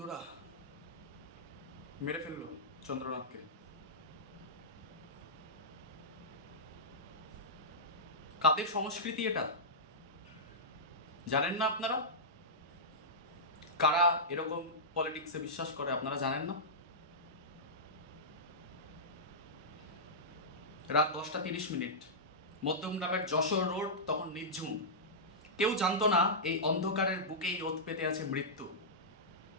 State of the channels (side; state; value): both; normal; correlation -0.13